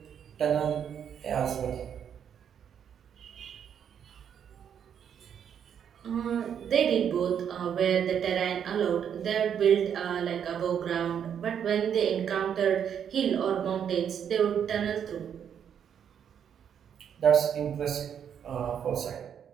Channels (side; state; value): left; quieter; 8.4 dB